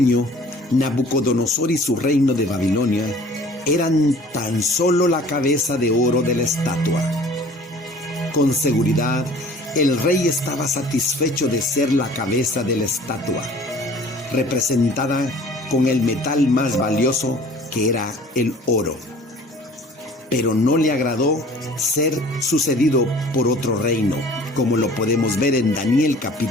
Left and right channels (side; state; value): both; normal; correlation 0.49